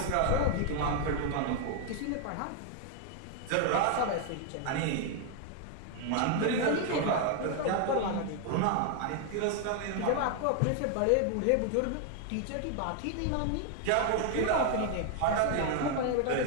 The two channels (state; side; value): different; both; correlation 0.00